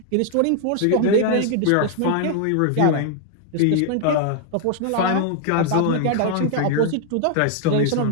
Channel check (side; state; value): both; different; correlation 0.00